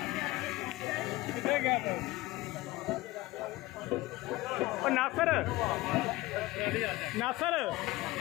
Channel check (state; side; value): quieter; right; 19.1 dB